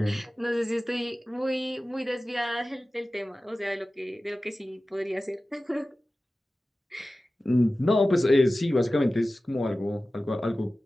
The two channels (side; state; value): both; normal; correlation 0.96